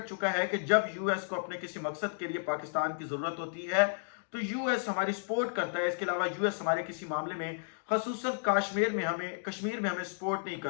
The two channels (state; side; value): silent; right; digital silence